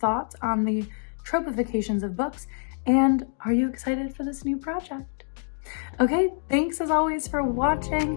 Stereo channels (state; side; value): silent; right; digital silence